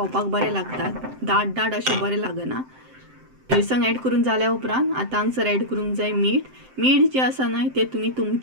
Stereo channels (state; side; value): late; left; 7.7 ms